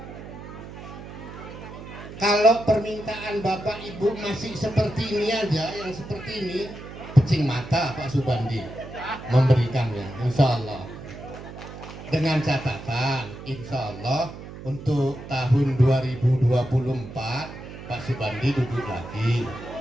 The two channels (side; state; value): right; noise; hum, 13 dB below the sound